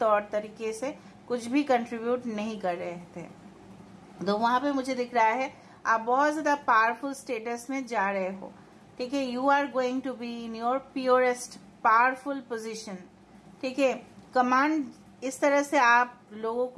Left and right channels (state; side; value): identical; both; correlation 1.00